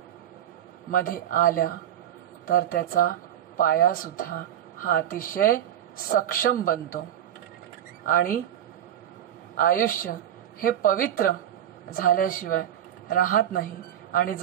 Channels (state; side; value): quieter; left; 10.7 dB